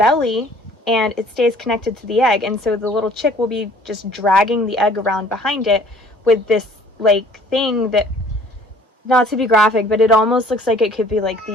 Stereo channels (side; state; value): both; normal; correlation 0.54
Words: and it stays connected to the egg, and so the little chick will be just dragging the egg around behind it with this like thing that, not to be graphic, but it almost looks like it could be like